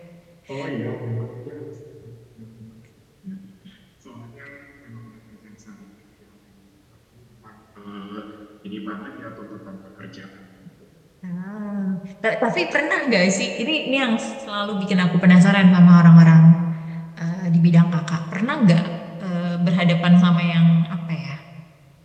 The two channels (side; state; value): both; identical; correlation 1.00